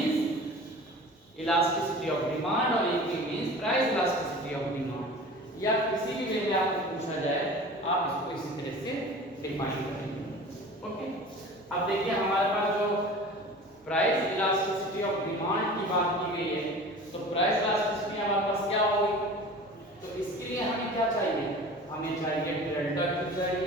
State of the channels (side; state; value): both; normal; correlation 0.39